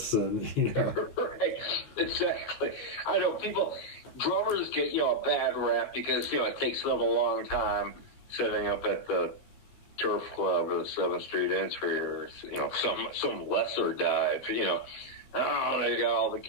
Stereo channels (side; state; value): right; late; 15 ms